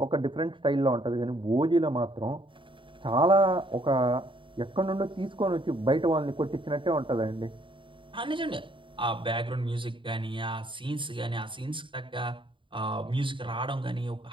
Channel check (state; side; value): late; left; 0.24 ms